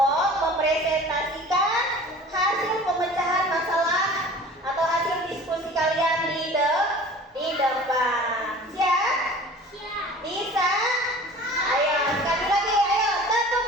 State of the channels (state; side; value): normal; both; correlation 0.43